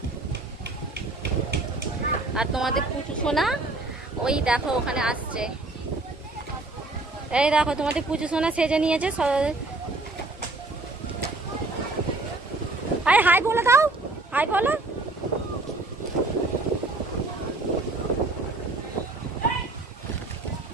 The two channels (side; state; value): left; quieter; 3.1 dB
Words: আর তোমাদের পুচু সোনা ওই দেখো ওখানে আসছে। এই দেখো তোমাদের পুচু সোনা সেজে নিয়েছে। হাই হাই বলে দাও, হাই বলো।